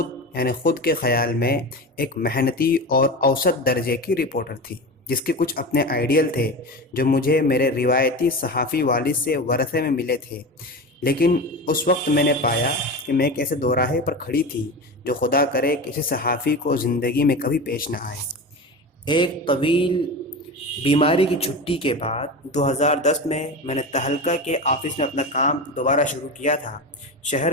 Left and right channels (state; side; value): normal; both; correlation 0.26